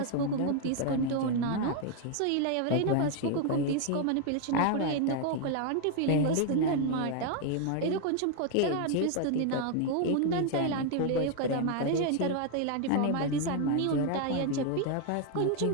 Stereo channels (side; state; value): both; different; correlation 0.00